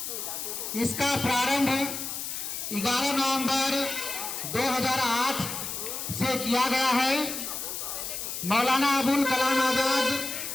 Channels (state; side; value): noise; left; hiss, 5 dB below the sound